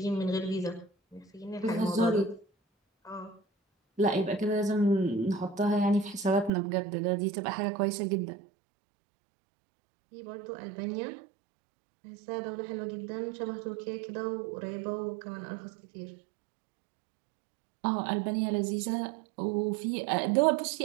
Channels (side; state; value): left; drops out; at 6.5 s